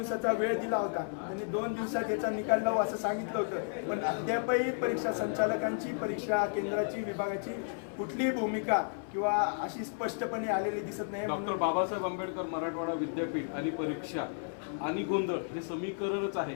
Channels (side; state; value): right; silent; 56 dB below the other